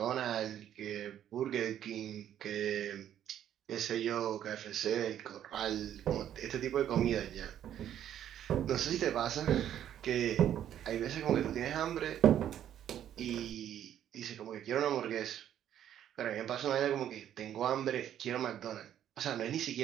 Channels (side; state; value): left; quieter; 10.6 dB